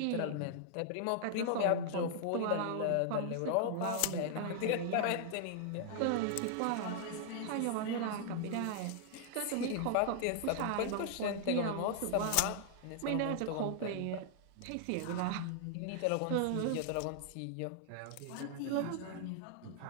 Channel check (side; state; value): both; different; correlation -0.01